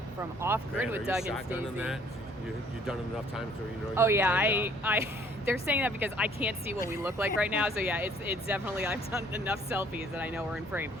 from Off Grid with Doug and shotgunning Stacy. that? You've done it enough times so you know. Oh yeah, I they're saying that because I can't see what we look like right now. So yeah, it's definitely, I've done enough selfies that I know we're in frame.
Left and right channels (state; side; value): normal; both; correlation 0.59